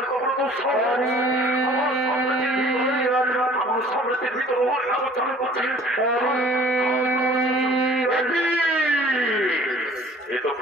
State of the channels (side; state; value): both; normal; correlation 0.51